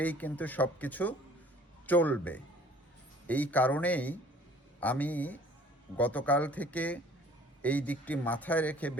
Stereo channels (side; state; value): both; normal; correlation 0.53